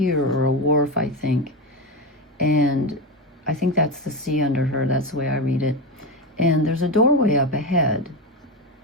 or a wharf, I think. And I think that's the sea under her. That's the way I read it. And there's a doorway up ahead.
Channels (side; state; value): both; normal; correlation 0.16